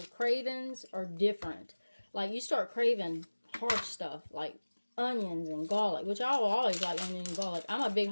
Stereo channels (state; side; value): inverted; both; correlation -1.00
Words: cravings are different. Like you start craving hard stuff like onions and garlic, which I will always like onion and garlic. I'm a big